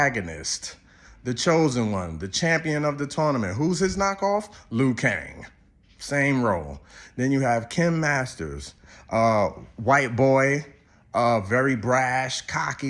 the chosen one, the champion of the tournament. Who's his knockoff? Liu Kang. Same role. Then you have Kim Masters, white boy, very brash,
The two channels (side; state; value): both; identical; correlation 1.00